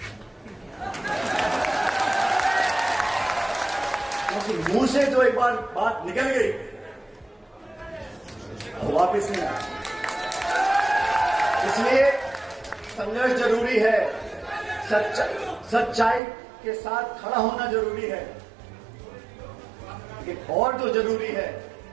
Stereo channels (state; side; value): drops out; left; at 16.2 s